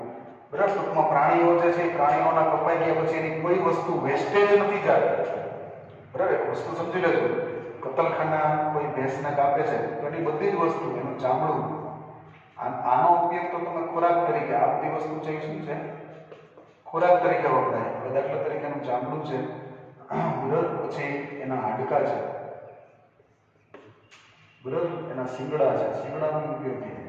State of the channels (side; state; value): both; identical; correlation 1.00